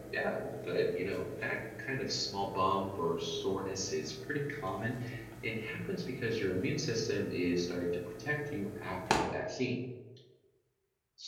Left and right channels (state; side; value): identical; both; correlation 1.00